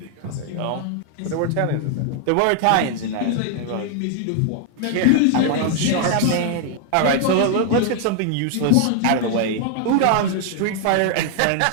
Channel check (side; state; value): both; different; correlation 0.00